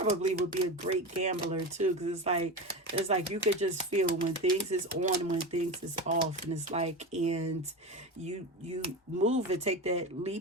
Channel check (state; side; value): normal; both; correlation 0.24